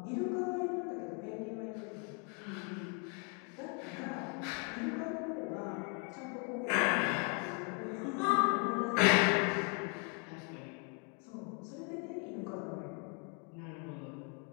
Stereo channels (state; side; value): quieter; right; 37.4 dB